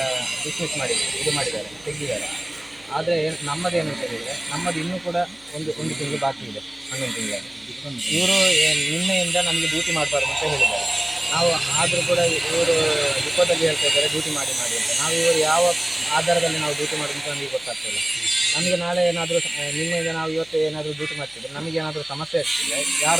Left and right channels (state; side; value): noise; left; hum, 29 dB below the sound